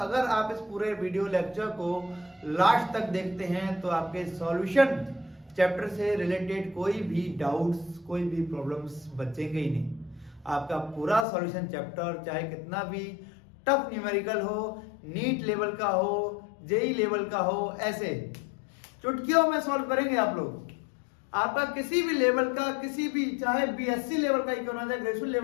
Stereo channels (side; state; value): right; drops out; at 11.2 s